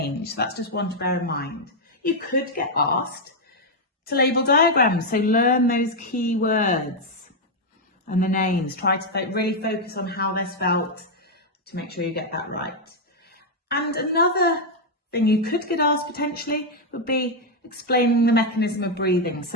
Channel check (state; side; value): normal; both; correlation 0.00